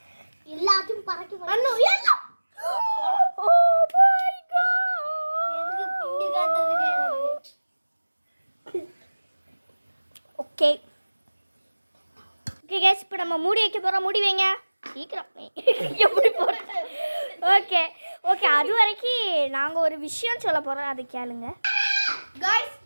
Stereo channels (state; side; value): inverted; both; correlation -1.00